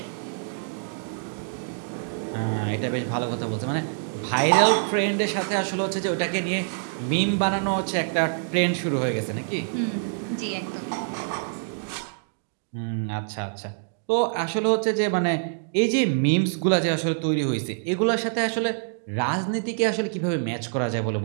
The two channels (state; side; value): silent; left; digital silence